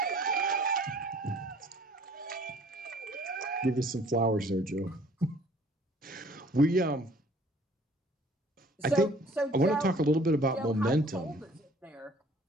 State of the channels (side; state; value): both; normal; correlation 0.55